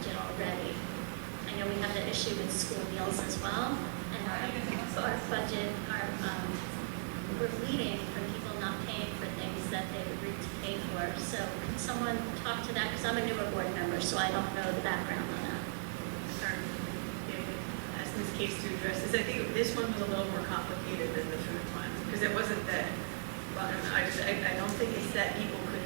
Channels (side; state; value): left; silent; digital silence